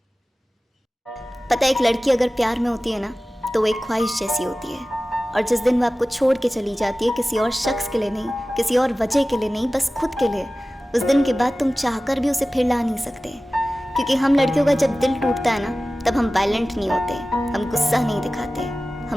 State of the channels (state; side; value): normal; both; correlation 0.96